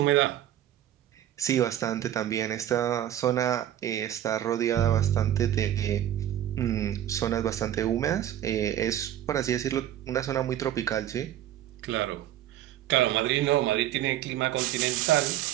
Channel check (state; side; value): quieter; left; 11.8 dB